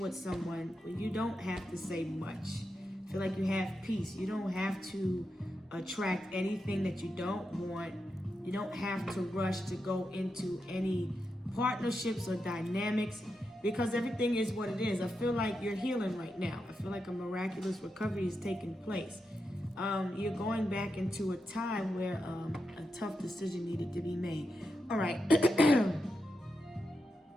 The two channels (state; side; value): normal; both; correlation 0.87